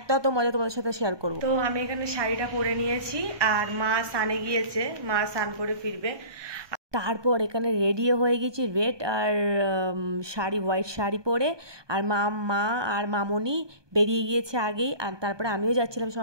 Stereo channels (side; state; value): left; late; 1.2 ms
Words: এত মজা তোমাদের সাথে শেয়ার করবো। তো আমি এখানে শাড়িটা পরে নিয়েছি, আর মা স্নানে গিয়েছে, মা স্নান করে ফিরবে। তারপর এখানে রেডিও হয়ে গেছি, রেড আর শাড়ি, হোয়াইট শাড়ি পরে। আর মা আর মামনি বেরিয়ে গিয়েছে আগেই, আর তারপরে আমিও যাচ্ছিলাম